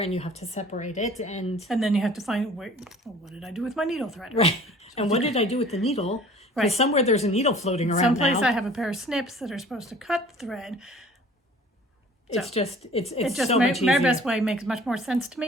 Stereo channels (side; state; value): both; normal; correlation 0.49